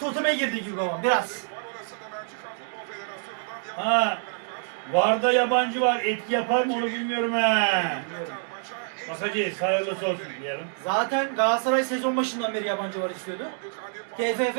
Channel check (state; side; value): silent; left; digital silence